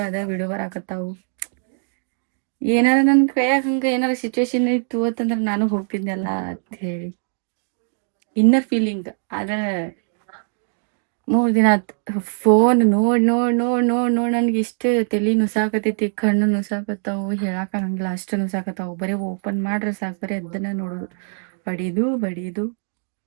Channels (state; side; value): silent; left; digital silence